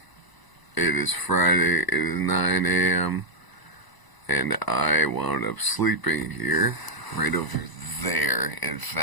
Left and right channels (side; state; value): right; late; 1.0 ms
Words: It is Friday, it is 9 a.m., and I wound up sleeping here, right over there, in